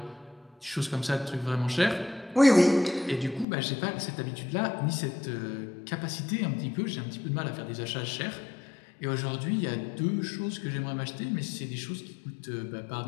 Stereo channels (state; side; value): drops out; right; at 3.5 s